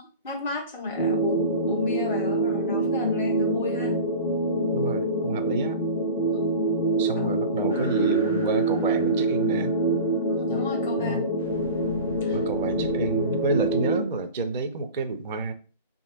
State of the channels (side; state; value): both; inverted; correlation -0.35